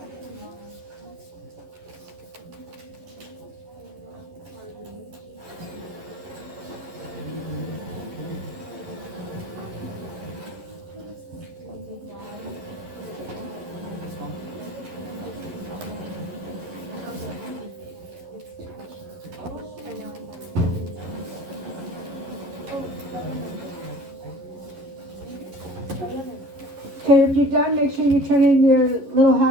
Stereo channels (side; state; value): left; late; 11 ms